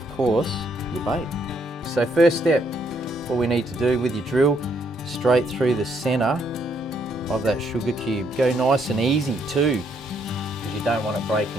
course, your bait. So first step, what we need to do with your drill, straight through the center of that sugar cube. Go nice and easy too, because you don't want it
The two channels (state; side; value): normal; both; correlation 0.72